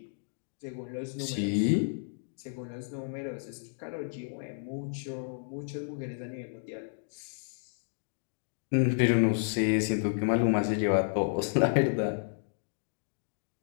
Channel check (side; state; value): right; silent; digital silence